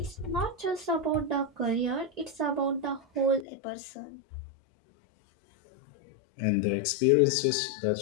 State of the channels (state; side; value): drops out; right; at 3.5 s